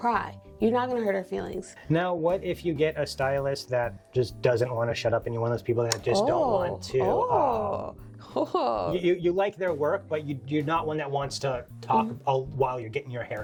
You're not going to hurt our feelings. Now, what if you get a stylist that just doesn't want to shut up and you're one of those people that just don't want to... You like their work, but you're not one that wants to talk while you're getting your hair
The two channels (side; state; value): both; identical; correlation 1.00